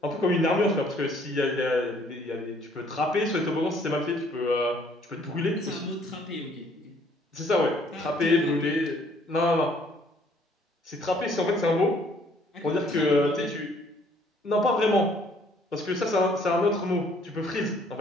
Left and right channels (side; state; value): both; normal; correlation 0.61